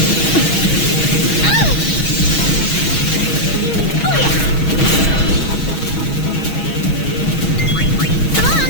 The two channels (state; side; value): late; right; 6.2 ms